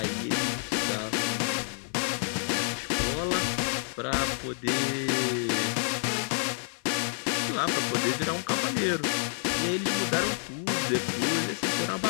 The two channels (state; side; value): silent; right; 59 dB below the other